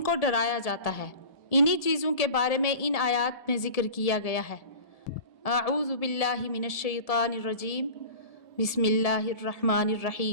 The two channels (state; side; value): late; right; 1.7 ms